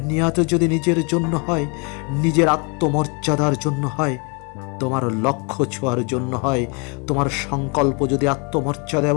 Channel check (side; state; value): right; quieter; 33.6 dB